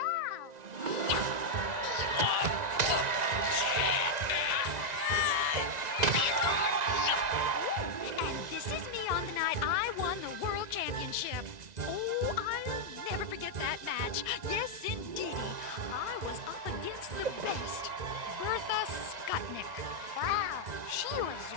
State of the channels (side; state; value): left; late; 1.9 ms